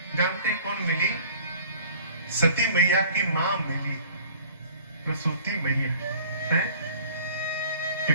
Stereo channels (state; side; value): inverted; both; correlation -0.49